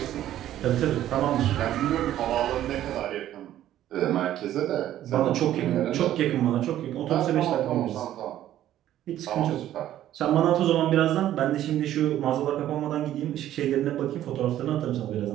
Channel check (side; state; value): left; quieter; 12.5 dB